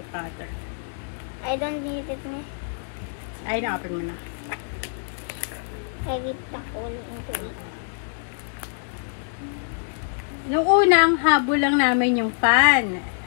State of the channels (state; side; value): silent; right; digital silence